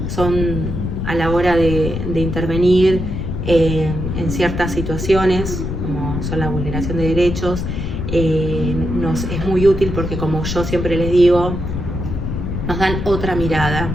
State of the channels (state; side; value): noise; left; rumble, 4 dB below the sound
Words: son a la hora de intervenir en ciertas situaciones, como son la vulneración de derechos, nos es muy útil porque, como yo siempre les digo, nos dan otra mirada.